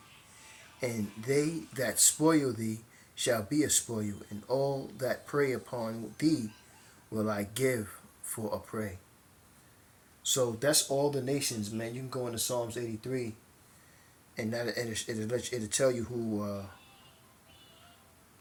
and they that spoil thee shall be a spoil, and all that prey upon thee will I give for a prey." So that's all the nations, man. You can go into Psalms 83, and it'll tell you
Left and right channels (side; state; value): both; identical; correlation 1.00